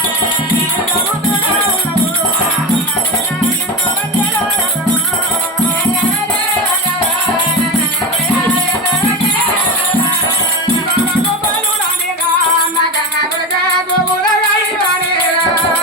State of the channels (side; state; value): both; normal; correlation 0.21